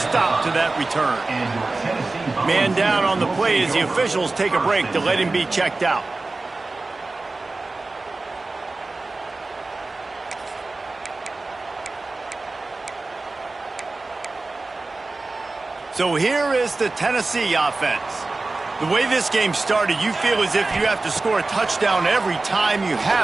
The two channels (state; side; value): quieter; left; 3.4 dB